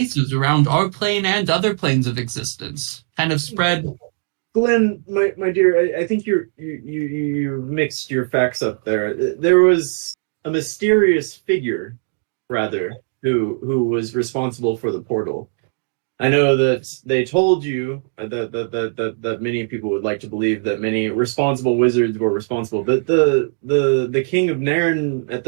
around our plane and other planes of existence. Kind of spread. Glenn, my dear, I think you mixed your facts up there. There was a mysterious figure, rather, who was responsible for the portal. I know that they told you that many people would like to believe that many responsible wizards were responsible, but the King of Nairn at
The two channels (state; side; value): silent; left; digital silence